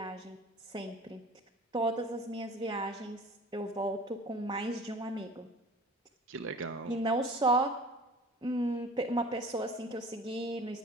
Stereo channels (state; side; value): normal; both; correlation 0.43